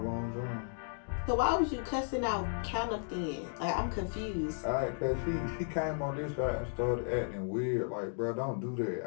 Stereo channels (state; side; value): silent; right; digital silence